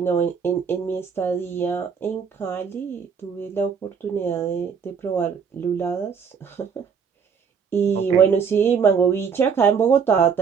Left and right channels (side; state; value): left; quieter; 6.5 dB